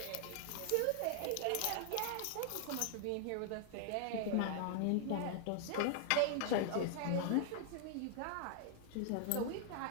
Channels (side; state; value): both; different; correlation 0.00